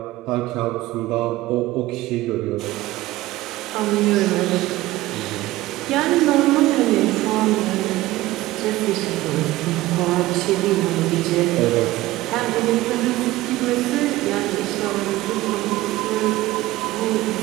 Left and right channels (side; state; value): left; quieter; 17.4 dB